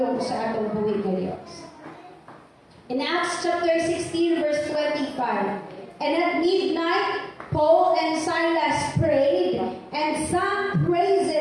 sa atong buhay nga Dios. In Acts chapter 16 verse 25, and at midnight Paul and Silas prayed and sang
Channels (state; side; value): identical; both; correlation 1.00